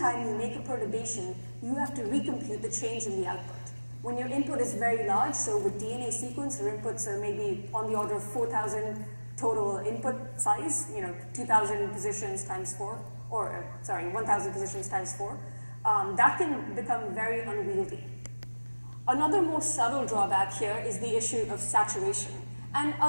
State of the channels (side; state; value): both; inverted; correlation -1.00